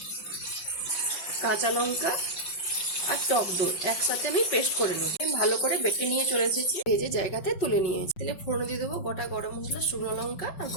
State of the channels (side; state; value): right; late; 5.6 ms